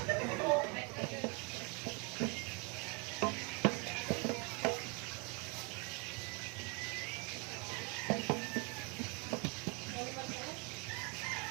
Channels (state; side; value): quieter; left; 30.3 dB